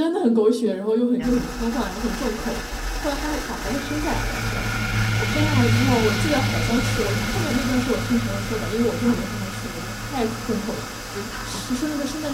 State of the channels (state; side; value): identical; both; correlation 1.00